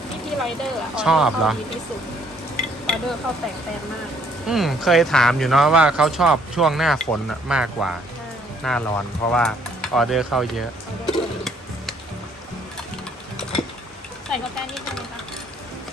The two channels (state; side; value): normal; both; correlation 0.65